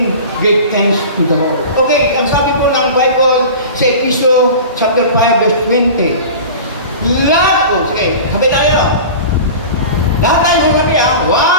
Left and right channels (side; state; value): both; inverted; correlation -0.35